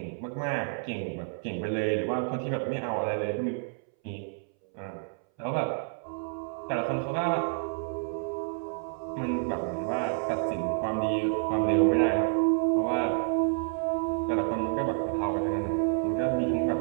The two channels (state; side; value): silent; left; 58 dB below the other